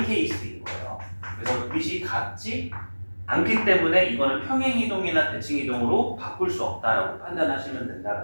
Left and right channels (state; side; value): inverted; both; correlation -1.00